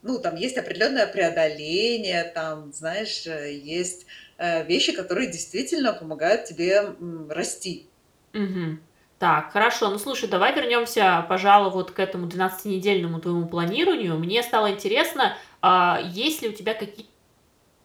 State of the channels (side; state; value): both; identical; correlation 1.00